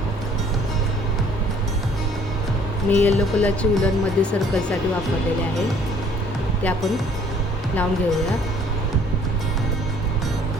मी येलो कलरची वूलनमध्ये सर्कलसाठी वापरलेले आहे, ते आपण लावून घेऊया।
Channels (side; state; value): both; normal; correlation 0.57